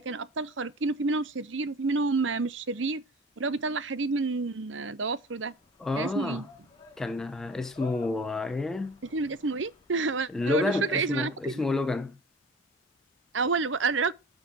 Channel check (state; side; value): normal; both; correlation 0.40